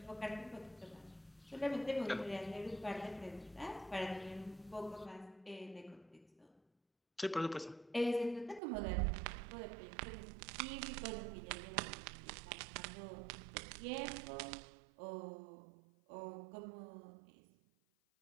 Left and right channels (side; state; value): left; drops out; at 8.6 s